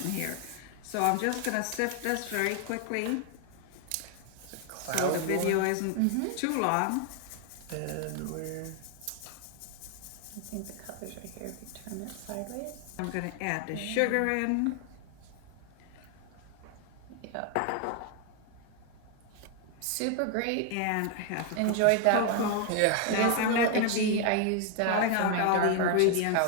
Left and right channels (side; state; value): both; different; correlation 0.01